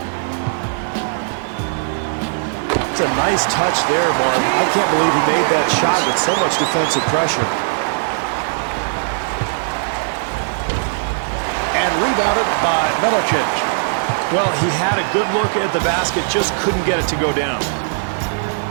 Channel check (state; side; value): silent; left; digital silence